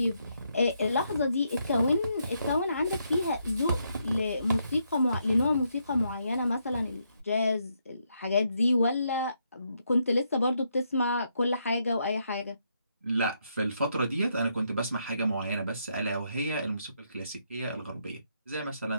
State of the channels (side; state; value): both; inverted; correlation -0.77